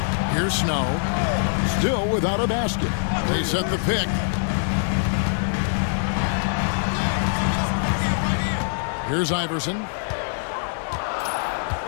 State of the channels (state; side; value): silent; right; digital silence